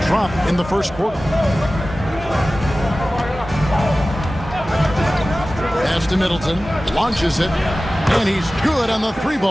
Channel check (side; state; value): both; normal; correlation 0.96